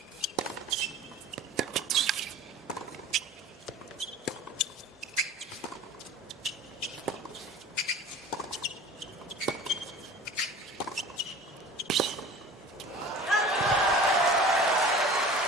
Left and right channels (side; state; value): both; normal; correlation 0.41